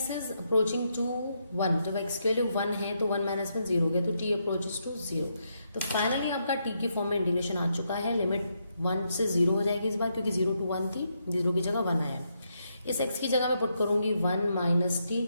is approaching to 1, जब x की वैल्यू 1 है तो 1 - 1 0 हो गया, तो t अप्रोचेस टू 0। तो फाइनली आपका t की फॉर्म में इंटीग्रेशन आ चुका है, लिमिट 1 से 0 हो जाएगी इस बार, क्योंकि 0 to 1 थी, 0 की जगह 1 आया। इस x की जगह मैं पुट करूंगी 1 - t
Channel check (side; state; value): both; inverted; correlation -0.79